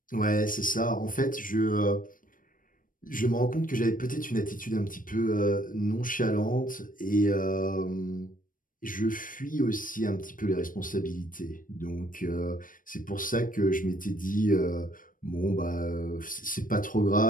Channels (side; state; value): right; late; 0.40 ms